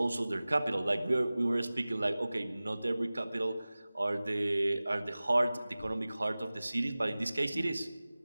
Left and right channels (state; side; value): inverted; both; correlation -0.98